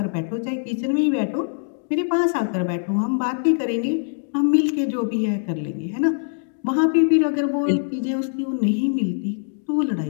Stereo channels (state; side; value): silent; right; digital silence